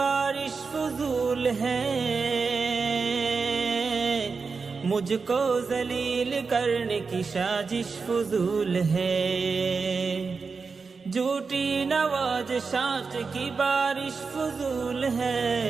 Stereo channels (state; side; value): quieter; left; 4.8 dB